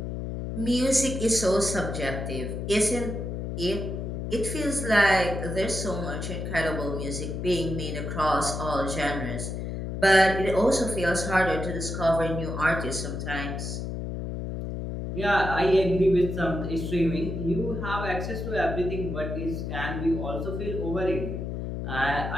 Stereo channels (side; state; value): left; noise; hum, 4 dB below the sound